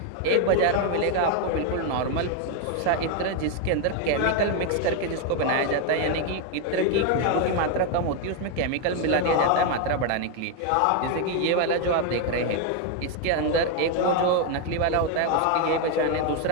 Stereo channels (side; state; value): both; different; correlation 0.01